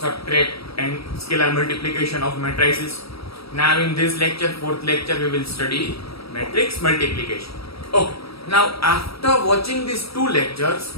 and scalar multiplication of matrices. Now in this lecture, fourth lecture, we will study matrix multiplication. Okay, now after watching these two lectures,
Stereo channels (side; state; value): right; late; 0.76 ms